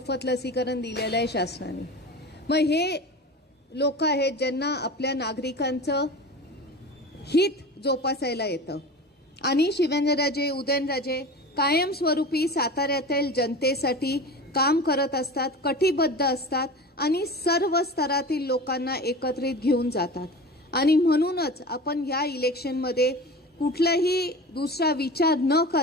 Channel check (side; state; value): both; normal; correlation 0.33